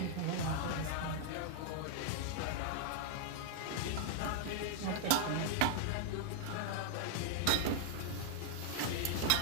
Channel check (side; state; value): both; different; correlation 0.00